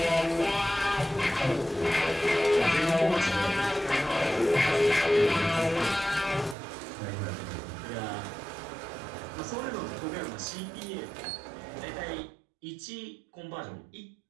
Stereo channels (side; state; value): left; drops out; at 6.6 s